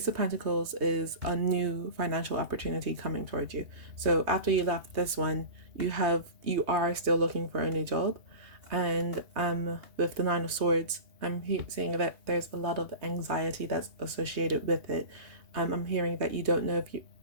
of Pentacles is a new financial opportunity coming towards you. So after you left this one, you are still looking for a new job. And with the Nine of Swords, I'm seeing that there's a lot of anxiety that's associated with it. I'm hearing that you don't know if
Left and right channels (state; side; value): late; left; 2.8 ms